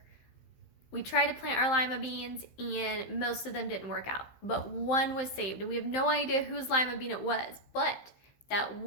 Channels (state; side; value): late; right; 15 ms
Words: we tried to plant our lima beans and most of them didn't work out, but one was saved, and we have no idea whose lima bean it was, but that